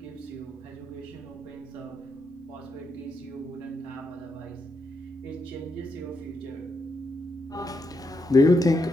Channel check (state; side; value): normal; both; correlation 0.81